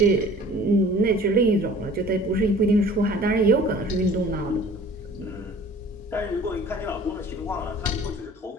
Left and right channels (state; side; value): normal; both; correlation 0.48